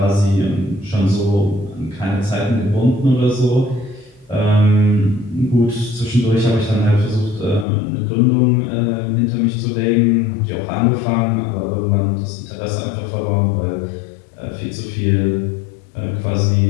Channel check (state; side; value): drops out; right; at 7.7 s